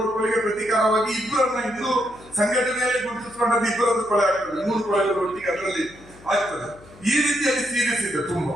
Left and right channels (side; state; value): left; noise; hum, 23 dB below the sound